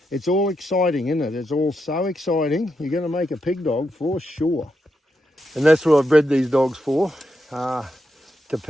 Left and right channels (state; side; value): normal; both; correlation 0.84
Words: It's all exciting, isn't it? It's all so exciting. You're going to make a pig dog for sure. And that's what I've bred these dogs for, to